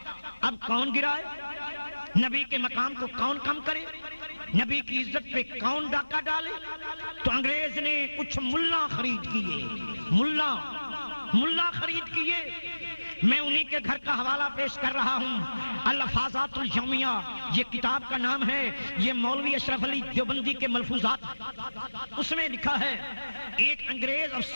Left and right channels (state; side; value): inverted; both; correlation -1.00